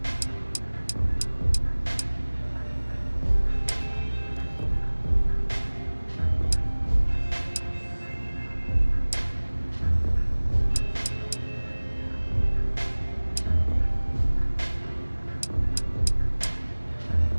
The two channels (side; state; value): both; inverted; correlation -1.00